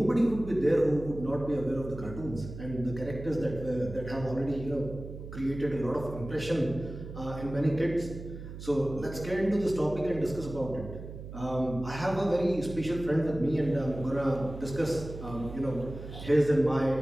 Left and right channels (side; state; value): right; noise; hum, 11 dB below the sound